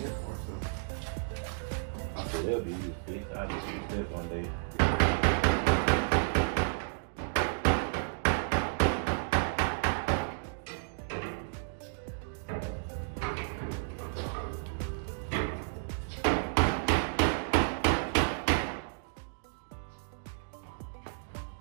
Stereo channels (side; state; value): left; silent; digital silence